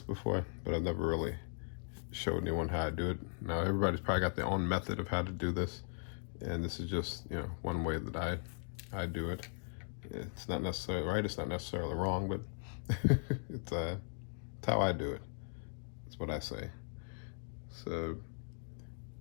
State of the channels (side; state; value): right; silent; digital silence